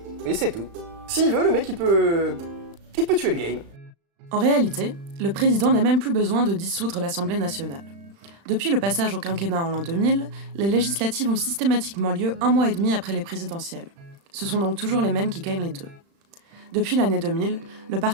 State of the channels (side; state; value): left; late; 35 ms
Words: c'est tout. S'il veut, le mec, il peut tuer le game. En réalité, le président n'a même plus besoin de dissoudre l'Assemblée nationale. Depuis le passage au quinquennat en l'an 2000, les législatives ont systématiquement lieu 1 mois et demi après les présidentielles. Ce sont donc toujours les mêmes qui gagnent les deux. Depuis l'année 2000, le